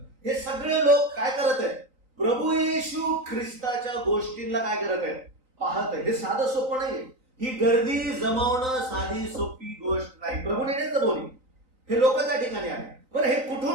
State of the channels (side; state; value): left; late; 3.9 ms